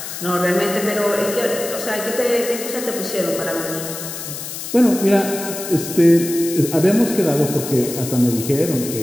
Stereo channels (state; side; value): noise; left; hiss, 8 dB below the sound